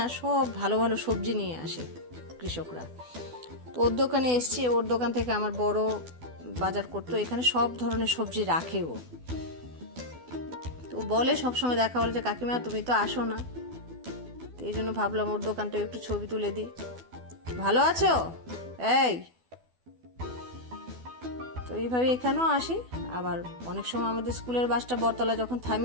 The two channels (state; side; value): late; left; 12 ms